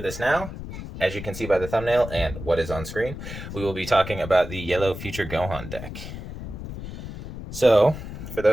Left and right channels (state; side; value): noise; left; rumble, 10 dB below the sound